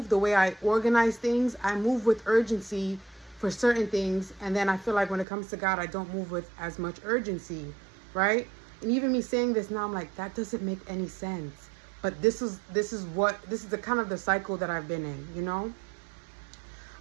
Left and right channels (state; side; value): drops out; left; at 5.2 s